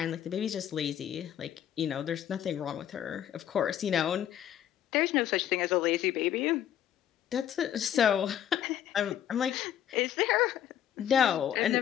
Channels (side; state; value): right; quieter; 10.5 dB